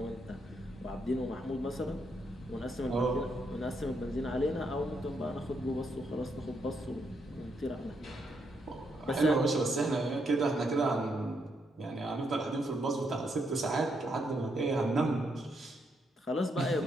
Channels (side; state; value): both; normal; correlation 0.78